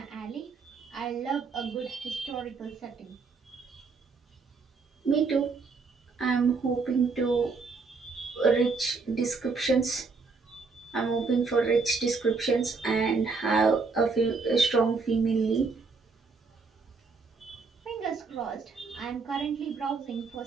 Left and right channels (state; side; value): quieter; left; 4.5 dB